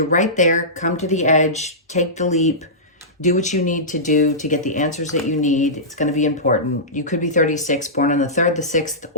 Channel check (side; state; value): both; normal; correlation -0.17